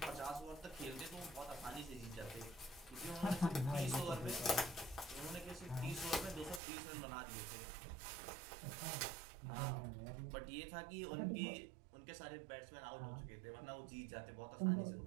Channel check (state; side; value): drops out; left; at 6.6 s